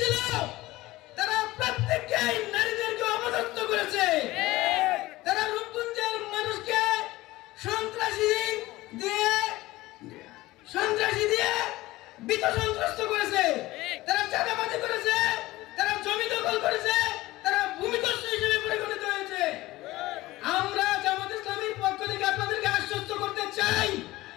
তারা প্রত্যেককেই নারীদেরকে অপদস্থ করেছে। তারা রূপগঞ্জের মানুষকে সন্ত্রাসী দিয়ে বিত সন্ত্রস্ত করেছে। তারা চাঁদাবাজি করেছে, তারা জমি দখল করেছে, তারা ভূমিদস্যু হিসেবে পরিগণিত হয়েছে। আমরা জামাত ইসলামীর পক্ষ থেকে আপনাদেরকে আশ্বস্ত করতে চাই,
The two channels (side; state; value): right; quieter; 18.4 dB